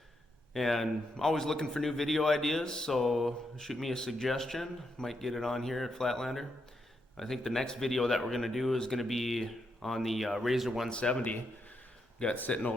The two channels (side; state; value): both; normal; correlation 0.81